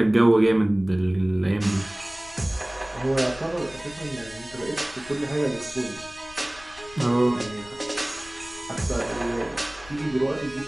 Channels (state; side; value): noise; left; rumble, 21 dB below the sound